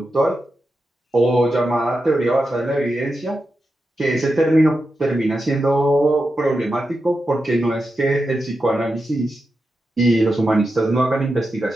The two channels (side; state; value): both; normal; correlation 0.89